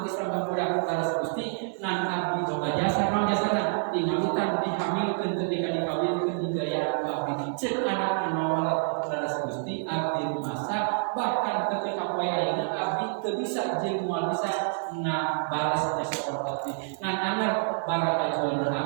Islam ka budak laras Gusti nan abdi doa jasa naon jasana tinggalutan dihamilkeun teu dikawinkeun digaya abdi ceuk anak nawal laras Gusti abdi masa bahkan ketika poe ayeuna abdi teu bisa jeung moal bisa ngabalas jasa abdi ngan anger barakajuan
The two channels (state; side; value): silent; left; 59 dB below the other